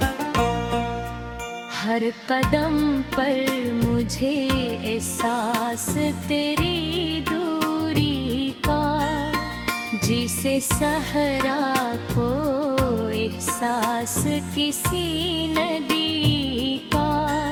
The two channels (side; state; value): both; identical; correlation 1.00